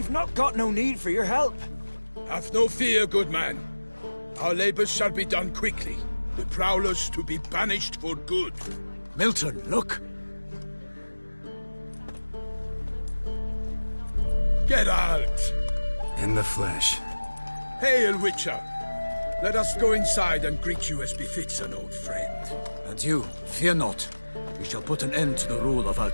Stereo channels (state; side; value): inverted; both; correlation -1.00